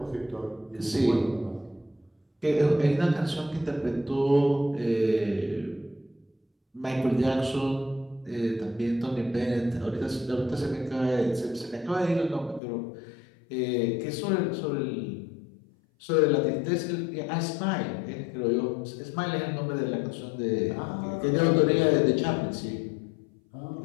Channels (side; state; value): right; drops out; at 12.6 s